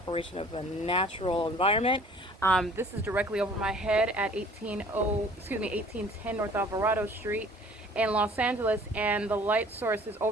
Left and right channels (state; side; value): normal; both; correlation 0.52